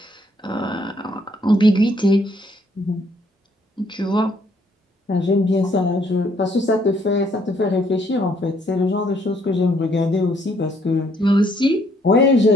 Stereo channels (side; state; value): both; normal; correlation 0.68